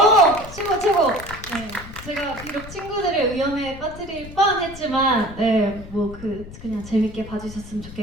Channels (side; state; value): left; noise; rumble, 15 dB below the sound